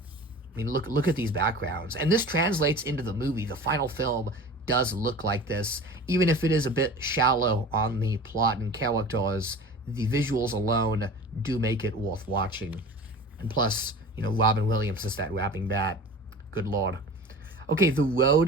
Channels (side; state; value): both; normal; correlation 0.37